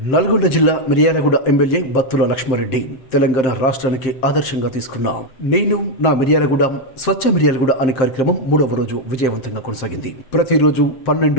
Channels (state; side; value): late; right; 7.6 ms